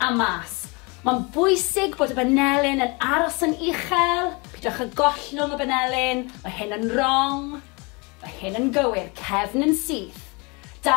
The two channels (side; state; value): right; quieter; 29.1 dB